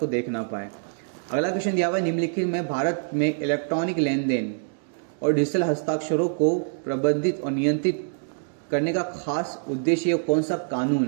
देख ना पाए। अगला क्वेश्चन दिया हुआ है, निम्नलिखित में भारत में इलेक्ट्रॉनिक लेन देन और डिजिटल हस्ताक्षरों को प्रबंधित और नियंत्रित करने का खास उद्देश्य कौन सा कानून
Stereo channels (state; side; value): silent; left; digital silence